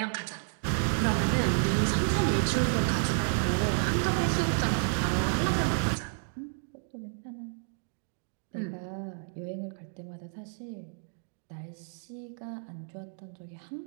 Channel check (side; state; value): left; silent; 57 dB below the other